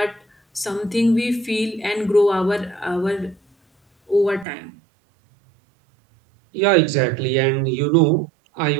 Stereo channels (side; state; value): left; drops out; at 4.5 s